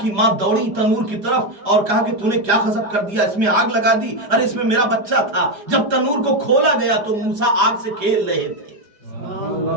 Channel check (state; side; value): late; left; 4.9 ms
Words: کی ماں دوڑی تنور کی طرف اور کہا کہ تو نے کیا غضب کر دیا, اس میں آگ لگا دی. ارے اس میں میرا بچہ تھا. جب تنور کو کھولا گیا تو موسیٰ آگ سے کھیل رہے تھے.